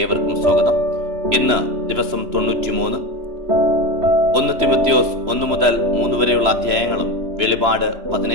ഏവർക്കും സ്വാഗതം. ഇന്ന് ദിവസം 93. 1 തിമോത്തിയോസ് 1 മുതൽ 3 വരെയുള്ള അധ്യായങ്ങളും വെളിപാട്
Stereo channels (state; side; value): late; left; 3.0 ms